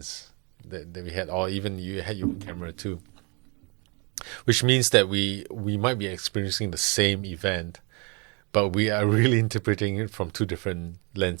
that we had, or even you had your own camera too. Which means that we might be experiencing the same event, but we are really interpreting it from two different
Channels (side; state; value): left; quieter; 32.6 dB